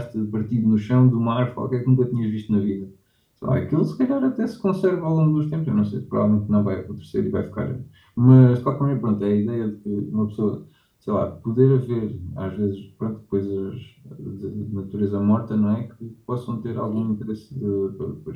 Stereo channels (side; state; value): both; identical; correlation 1.00